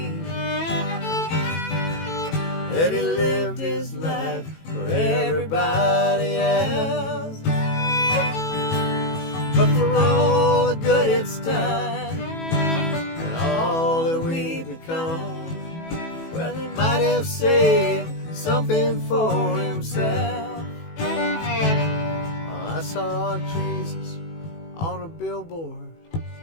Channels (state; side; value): late; right; 18 ms